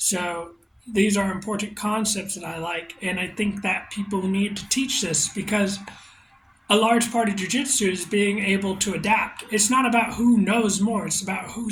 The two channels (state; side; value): identical; both; correlation 1.00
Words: these are important concepts that I like, and I think that people need to teach this because a large part of jujitsu is being able to adapt. It's not about who knows more, it's about